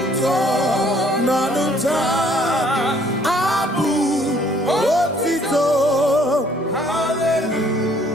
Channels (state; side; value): normal; both; correlation 0.61